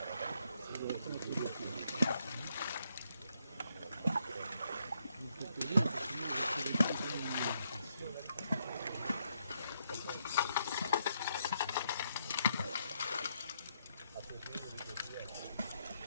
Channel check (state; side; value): inverted; both; correlation -0.76